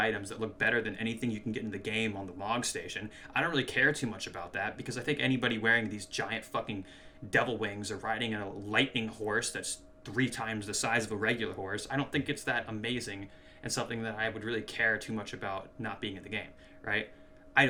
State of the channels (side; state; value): both; identical; correlation 1.00